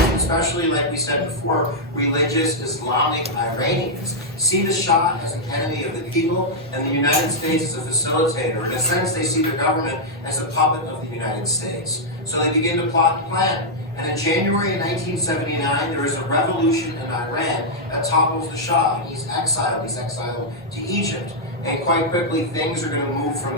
especially like we said before, religious Islamic Iranians, see the Shah as an enemy of the people and the United States as a facilitator. In a sense, they see the government as a puppet of the United States. So they begin to plot and plan. And in January of 1979, there is a revolution in Iran that topples the Shah. He's exiled to Egypt. And quite quickly, things are going to move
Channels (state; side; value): normal; both; correlation -0.05